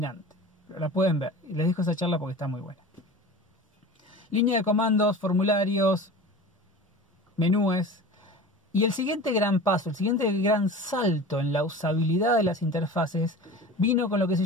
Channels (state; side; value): normal; both; correlation 0.36